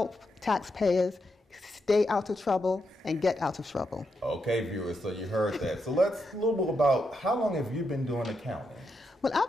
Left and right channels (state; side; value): normal; both; correlation 0.83